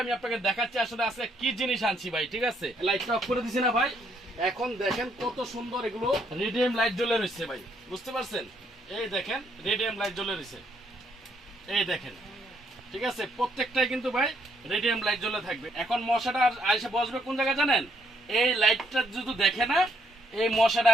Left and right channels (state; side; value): normal; both; correlation 0.71